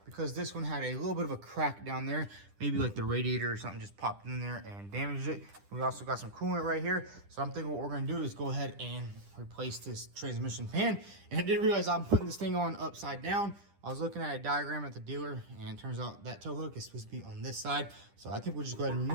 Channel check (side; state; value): left; late; 10 ms